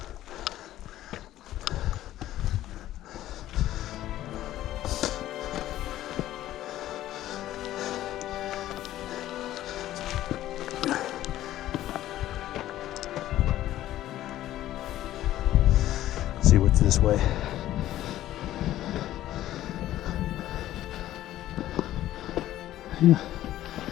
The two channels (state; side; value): quieter; right; 13.8 dB